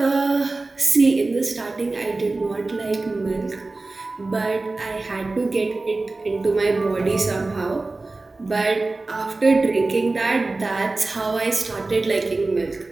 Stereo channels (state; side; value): quieter; left; 3.3 dB